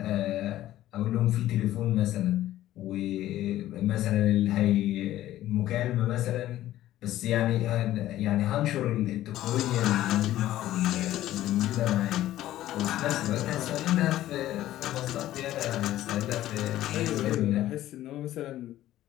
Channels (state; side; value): quieter; right; 14.0 dB